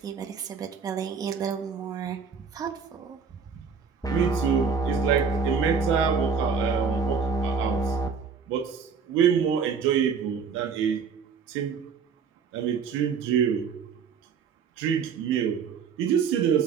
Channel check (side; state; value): left; quieter; 6.1 dB